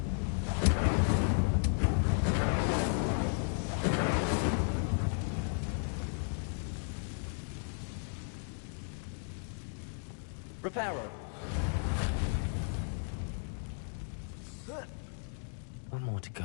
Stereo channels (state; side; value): silent; right; 55 dB below the other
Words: Reparo. One more to